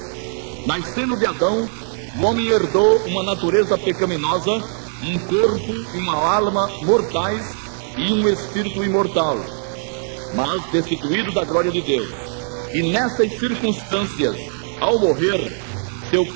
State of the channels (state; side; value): silent; left; digital silence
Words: Nascendo de Adão, o homem herdou uma natureza pecaminosa, um corpo e uma alma mortais e um espírito imortal, mas destituído da glória de Deus. E nessas circunstâncias, ao morrer, seu